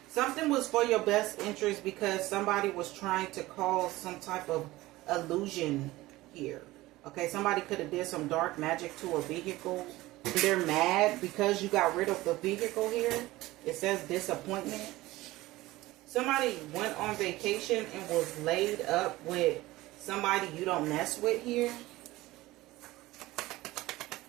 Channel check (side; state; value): left; quieter; 18.4 dB